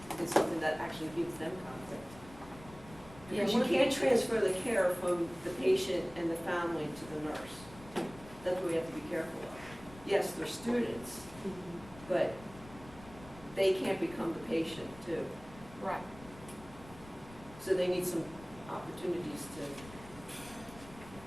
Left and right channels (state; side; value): noise; left; rumble, 19 dB below the sound